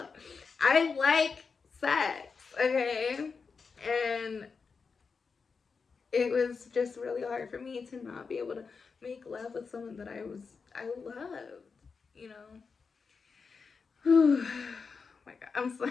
I like sex, okay? And it was just really hard for me to not be able to make love with someone that I loved, you know. Oh my God, I'm so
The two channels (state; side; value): quieter; right; 5.1 dB